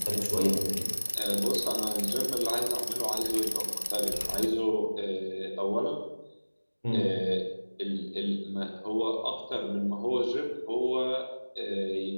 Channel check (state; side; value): inverted; both; correlation -1.00